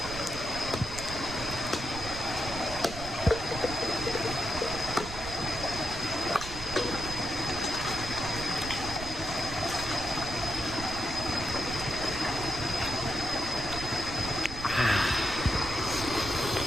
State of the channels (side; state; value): right; noise; rumble, 11 dB below the sound